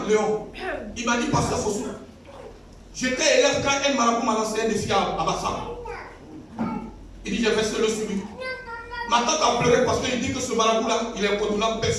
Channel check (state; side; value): identical; both; correlation 1.00